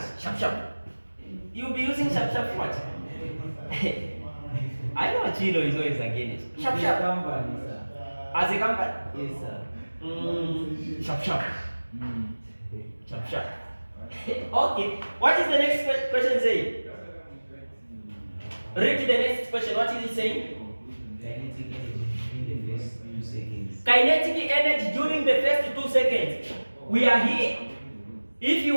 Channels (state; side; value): inverted; both; correlation -1.00